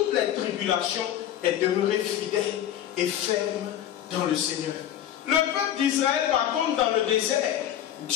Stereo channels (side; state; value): right; quieter; 11.1 dB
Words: les tribulations, est demeuré fidèle et ferme dans le Seigneur. Le peuple d'Israël, par contre, dans le désert,